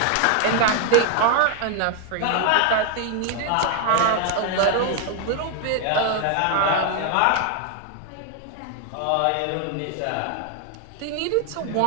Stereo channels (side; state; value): both; different; correlation 0.00